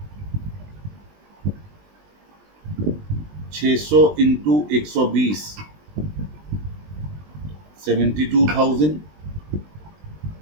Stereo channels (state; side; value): late; left; 20 ms